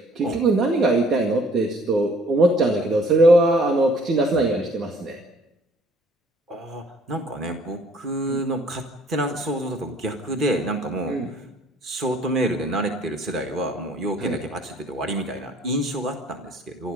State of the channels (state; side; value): normal; both; correlation 0.58